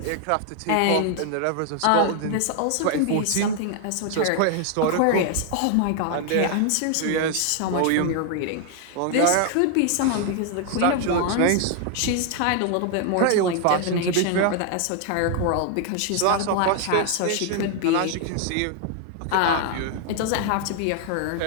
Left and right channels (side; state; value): both; different; correlation 0.00